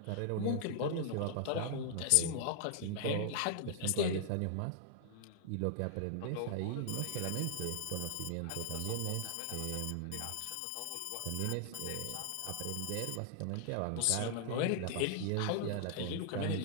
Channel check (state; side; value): different; both; correlation -0.01